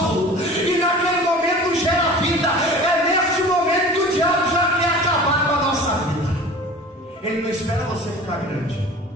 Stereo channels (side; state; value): both; normal; correlation 0.40